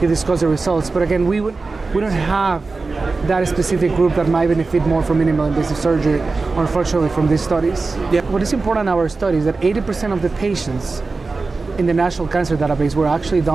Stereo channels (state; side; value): quieter; left; 3.9 dB